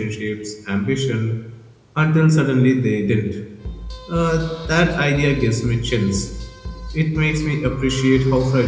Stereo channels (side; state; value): both; identical; correlation 1.00